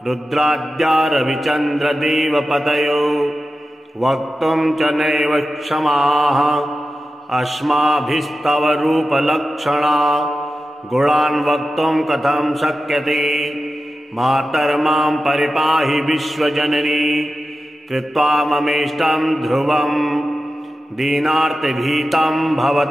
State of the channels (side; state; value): both; normal; correlation 0.92